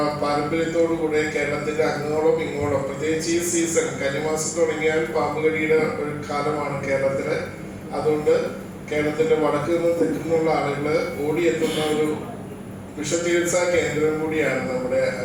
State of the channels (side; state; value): both; identical; correlation 1.00